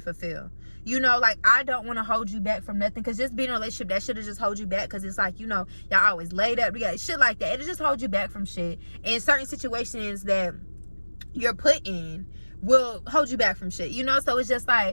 you know. Like, I don't want to hold you back from nothing, because just being in a relationship, that should have just hold you back, because it's like, you know, y'all always laid up, we got shit like that, it'll just hold you back from shit in certain situations that you're put in will hold you back from shit, you know? So it's just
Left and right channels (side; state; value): both; inverted; correlation -1.00